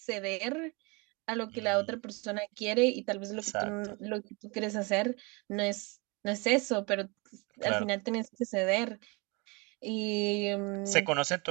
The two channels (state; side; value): quieter; left; 28.6 dB